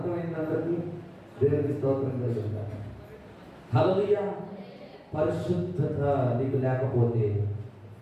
అందరికీ? దేవునికి స్తోత్రం కలుగుతారు. హల్లెలూయా. పరిశుద్ధత నీకు లేకపోతే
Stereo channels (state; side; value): identical; both; correlation 1.00